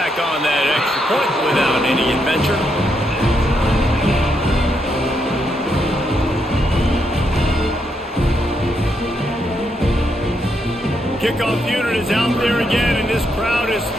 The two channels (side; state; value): both; normal; correlation 0.79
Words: on that extra point without any adventure. Kickoff unit is out there again, and this crowd is just